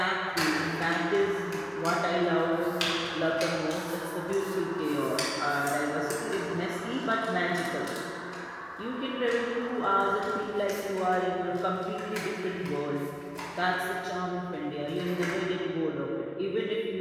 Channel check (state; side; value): identical; both; correlation 1.00